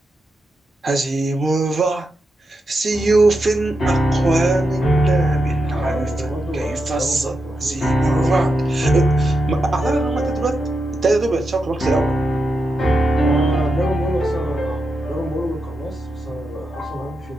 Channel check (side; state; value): both; normal; correlation 0.86